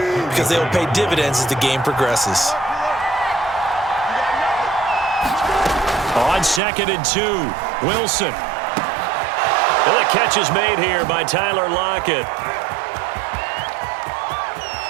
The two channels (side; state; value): left; drops out; at 6.6 s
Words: they will pay dividends as the game progresses. On 2nd and 2, Wilson. And the catch is made here by Tyler Lockett.